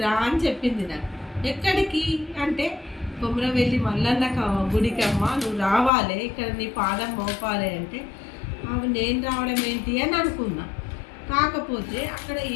రా అని చెప్పింది నాకు. ఎక్కడికి అంటే కొమరవెల్లి మల్లన్న గుడికి అమ్మ నువ్వు రావాలి, ఇక్కడ నీ పాదం మోపాలి అంటే అవి నేను రావడం ఏంటి అని అనుకున్నా. కాకపోతే అక్కడ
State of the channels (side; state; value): right; drops out; at 5.9 s